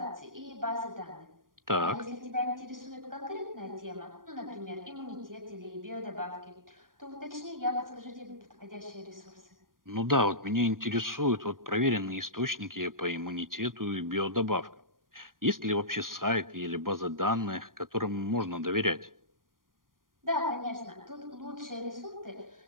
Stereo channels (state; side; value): late; left; 0.91 ms